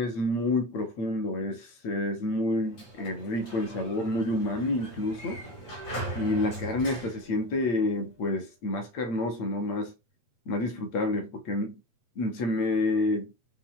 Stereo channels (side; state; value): right; late; 8.3 ms